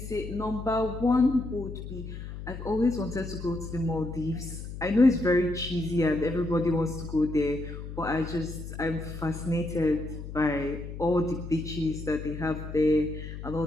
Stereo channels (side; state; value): left; noise; hum, 9 dB below the sound